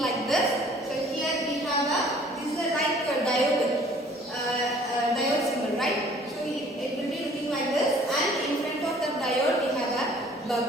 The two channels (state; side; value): normal; both; correlation 0.54